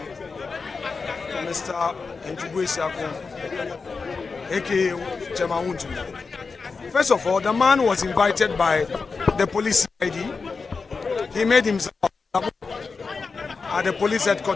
Mr. Wontumi, aka Wontumi. First of all, the man was invited by the police ID. He made himself at the police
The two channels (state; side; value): quieter; right; 4.6 dB